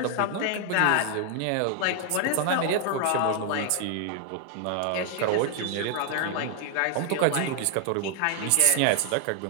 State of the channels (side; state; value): both; different; correlation 0.00